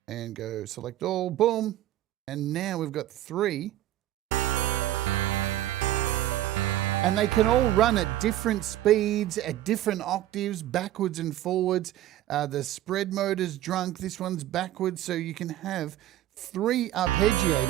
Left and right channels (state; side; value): quieter; left; 13.6 dB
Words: and go select all, boom. And now we've got 3. And they can all run at different speeds, at different octaves, backwards and forwards. The spread mode is drunk, this one's backwards. So you can have 3